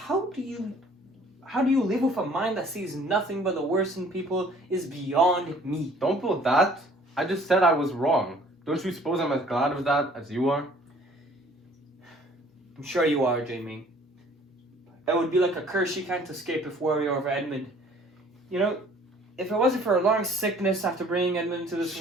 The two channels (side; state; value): both; normal; correlation 0.55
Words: do you live with a mind that sees nothing but the worst in people is beyond me. Don't pull that. I just said I was wrong. Don't you suppose I'm as glad of that as you are? I'm sure you are, Jamie. It would be like a curse you can't escape if worry over Edmund. You know, if it wasn't for a long sickness after bringing Edmund into this